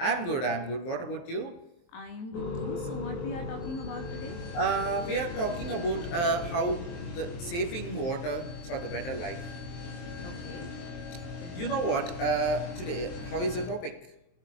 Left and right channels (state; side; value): late; right; 23 ms